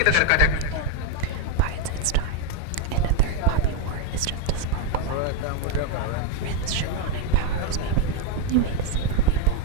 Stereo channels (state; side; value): different; both; correlation 0.02